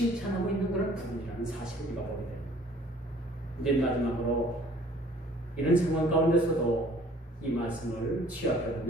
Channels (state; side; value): normal; both; correlation 0.54